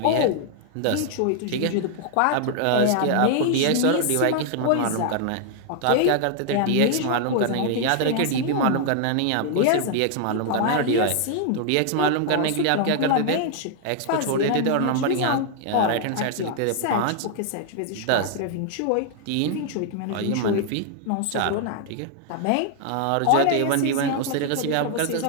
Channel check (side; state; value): both; different; correlation 0.00